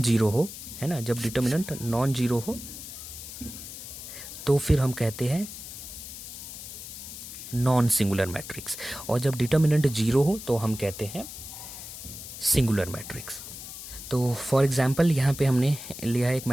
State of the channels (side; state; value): left; noise; hiss, 11 dB below the sound